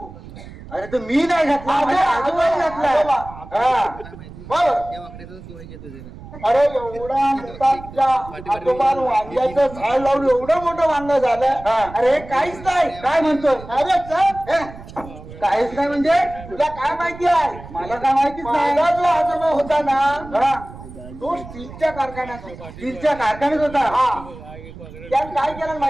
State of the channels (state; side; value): noise; right; rumble, 16 dB below the sound